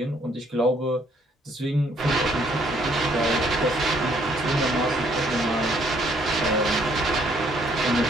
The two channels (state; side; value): normal; both; correlation 0.66